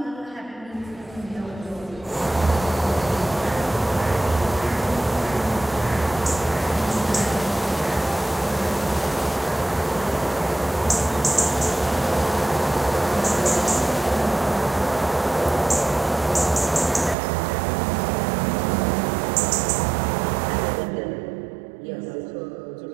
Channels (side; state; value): left; drops out; at 17.2 s